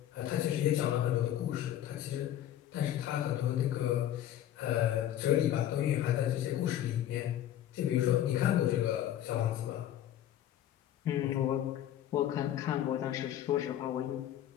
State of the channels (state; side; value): quieter; right; 11.7 dB